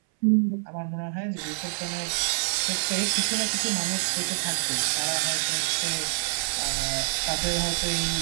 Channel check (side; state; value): left; silent; 59 dB below the other